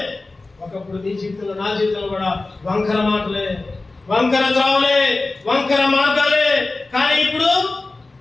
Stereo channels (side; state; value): right; quieter; 3.3 dB